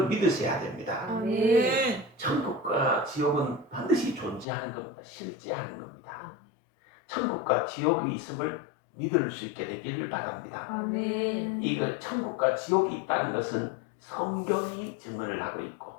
믿으셔야 됩니다. 천국과 지옥은 반드시 존재하는 겁니다. 실제하는 겁니다. 천국과 지옥이 있음을 믿을 수 있게 되기를 바랍니다. 이거 천국과 지옥이 있다는 것은 성경이 증언을 하고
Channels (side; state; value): right; drops out; at 4.5 s